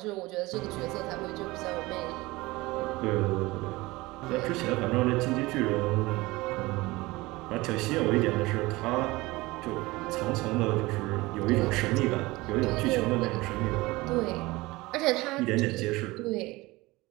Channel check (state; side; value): quieter; left; 21.0 dB